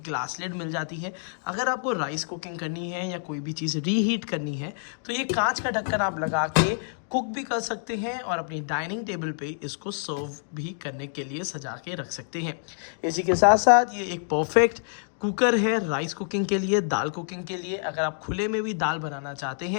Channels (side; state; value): right; silent; digital silence